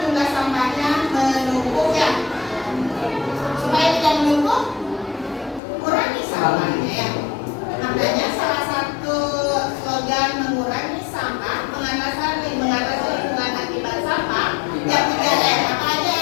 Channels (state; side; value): drops out; right; at 5.6 s